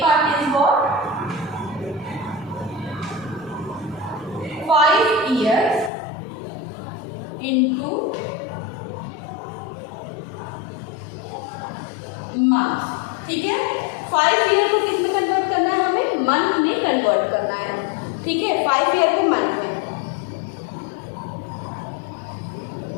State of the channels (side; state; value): right; drops out; at 5.9 s